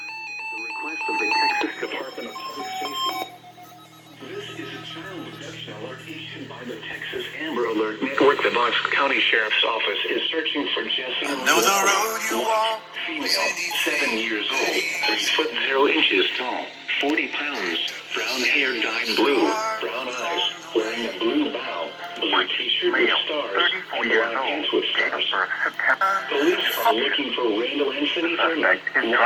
request of the Texas Department of Public Safety. This is a child abduction alert issued by the Texas Amber Alert Network. The BOSQUE County Sheriff's Office is searching for Jessie Walnut, female, 7 years old, 3 foot 0 inches tall, 40 pounds, brown hair dyed blue, brown eyes, wearing a blue bow, blue t-shirt with stars, and black pants with stars. Police are looking for Randall Anthony Thurman,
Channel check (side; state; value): both; identical; correlation 1.00